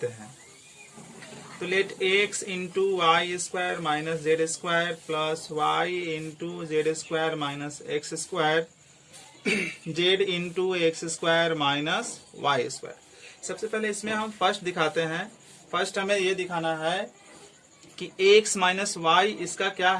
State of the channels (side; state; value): both; identical; correlation 1.00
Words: हैं। तो let x into Y square minus Z square plus Y into Z square minus X square Z into X square minus Y square. सबसे पहले इसमें हम फर्स्ट दिखाते हैं। फर्स्ट हमें ये दिखाना है कि x माइनस वाई इसका क्या